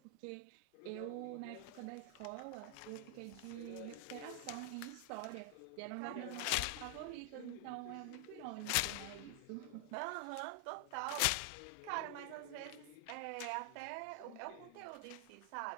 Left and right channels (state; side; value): different; both; correlation 0.00